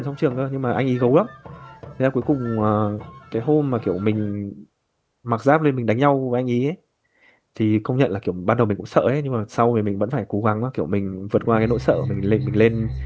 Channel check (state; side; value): identical; both; correlation 1.00